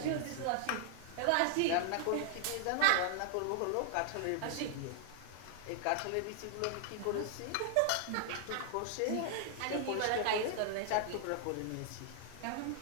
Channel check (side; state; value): both; different; correlation -0.01